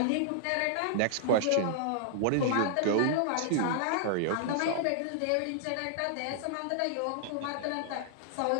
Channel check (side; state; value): both; different; correlation -0.01